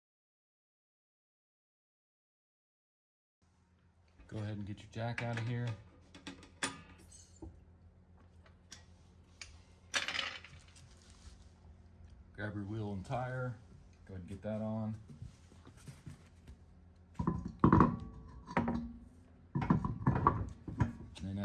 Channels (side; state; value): both; identical; correlation 1.00